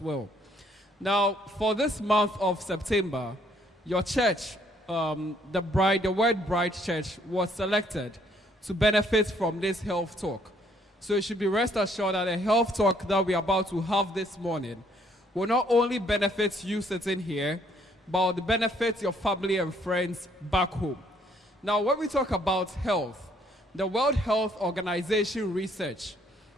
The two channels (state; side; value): normal; both; correlation 0.66